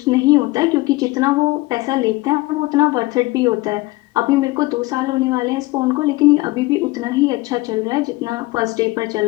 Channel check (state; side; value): quieter; right; 21.3 dB